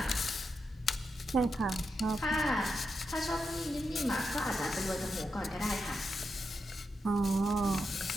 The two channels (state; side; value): normal; both; correlation 0.86